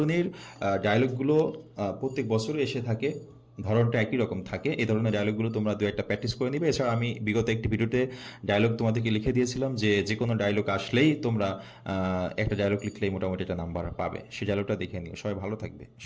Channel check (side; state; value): both; identical; correlation 1.00